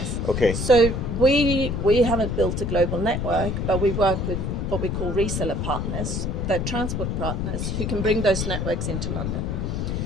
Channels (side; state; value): left; noise; rumble, 1 dB below the sound